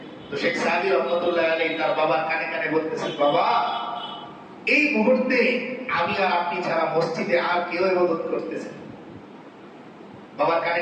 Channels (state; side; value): identical; both; correlation 1.00